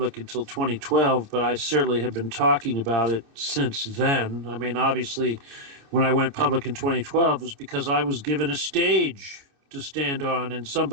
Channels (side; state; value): left; late; 29 ms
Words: until 2012, but I certainly have been talking about it since then. I mean, obviously, when I went public in 2012, it was because I was given a stage to stand on and